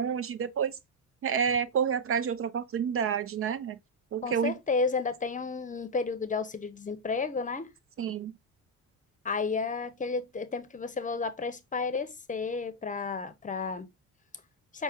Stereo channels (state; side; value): normal; both; correlation -0.05